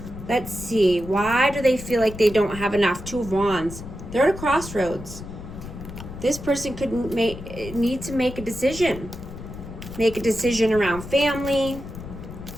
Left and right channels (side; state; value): left; noise; rumble, 12 dB below the sound